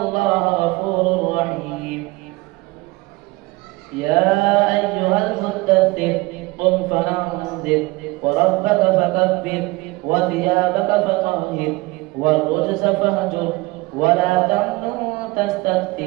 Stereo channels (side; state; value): left; quieter; 22.4 dB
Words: غفور رحيم يا أيها المدثر قم فأنذر وربك فكبر وثيابك فطهر والرجز فاهجر ولا تمنن